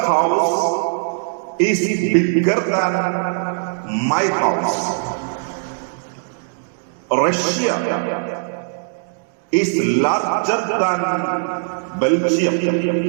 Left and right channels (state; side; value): silent; left; digital silence